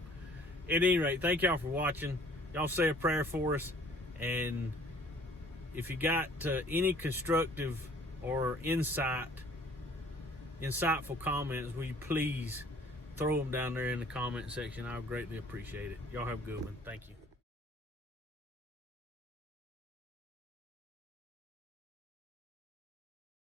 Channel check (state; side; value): normal; both; correlation 0.55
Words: at any rate, thank y'all for watching. Y'all say a prayer for us. And if you got any constructive or insightful comments, will you please throw them down there in the comment section? I would greatly appreciate it. Y'all have a good one. Thank you.